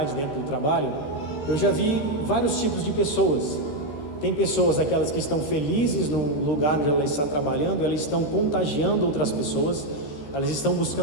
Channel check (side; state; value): right; late; 14 ms